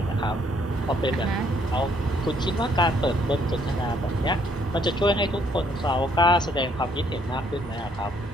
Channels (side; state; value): both; normal; correlation 0.67